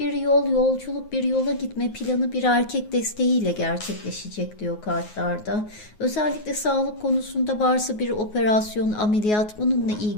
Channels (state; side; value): late; right; 9.5 ms